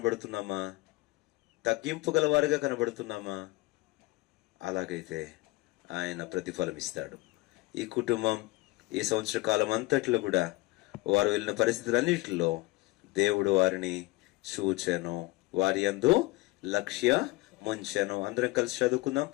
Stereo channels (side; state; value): right; quieter; 21.1 dB